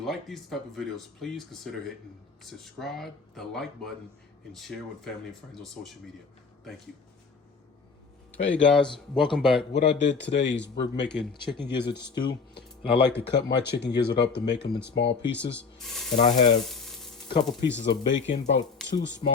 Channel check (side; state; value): right; quieter; 4.9 dB